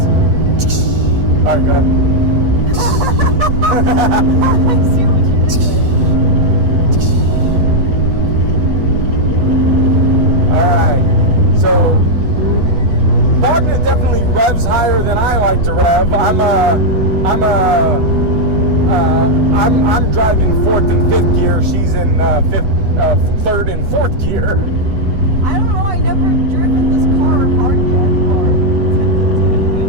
All right, go ahead. I see what you did there. Alright, so Wagner definitely revs higher than I like to rev. I'm driving fourth and fifth gear. She's in third and fourth gear. I don't know. I never driven this car hard yet, or attempted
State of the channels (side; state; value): left; late; 8.0 ms